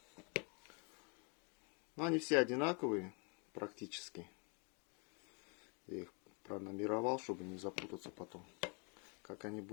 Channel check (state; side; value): quieter; right; 35.9 dB